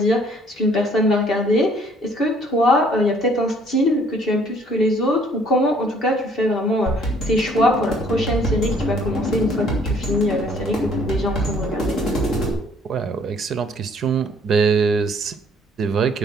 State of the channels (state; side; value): normal; both; correlation 0.60